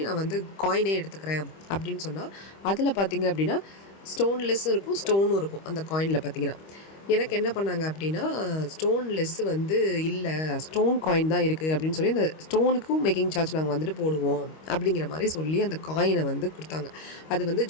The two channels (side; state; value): right; late; 25 ms